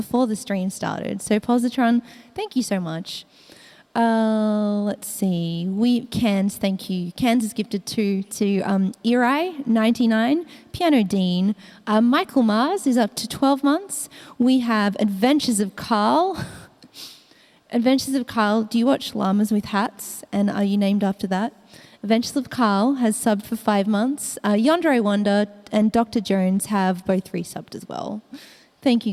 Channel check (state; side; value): identical; both; correlation 1.00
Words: the stream started. So Positron, thank you so much. Let's see. Cans, thank you. Cans is gifted to Eri, 99, Piano Dean. Michael Mars is up to 12 months. We have Adventures of Carl. Adventures of Carl, do you watch Llamas with Hats? And are you named after that? Adventures of Carl has subbed for 5 months. Yandere Wonder and Dr. Jones have both resubbed as well. Thank